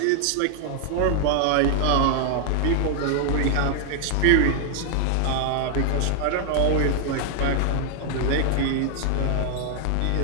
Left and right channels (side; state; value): both; different; correlation 0.00